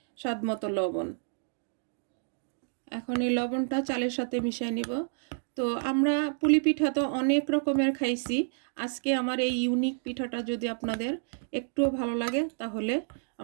স্বাদমতো লবণ। এখন এই লবণটা চালের সাথে মিশিয়ে নিব। তো আমরা পুলি পিঠা তো অনেক রকমের খাইছি, আজকে আমার এই ইউনিক পিঠাটা যদি আপনাদের একটুও ভালো লাগে তাহলে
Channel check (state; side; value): silent; left; 58 dB below the other